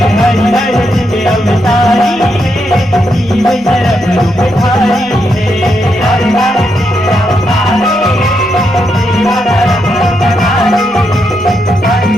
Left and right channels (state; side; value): noise; right; rumble, 25 dB below the sound